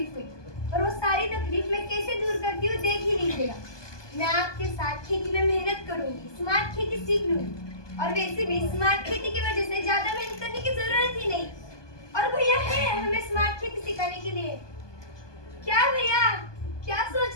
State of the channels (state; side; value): late; right; 1.2 ms